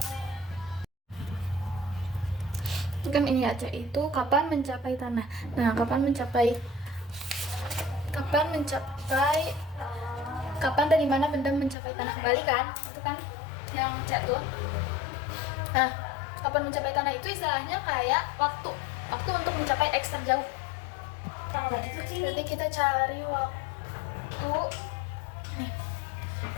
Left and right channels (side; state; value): right; drops out; at 11.8 s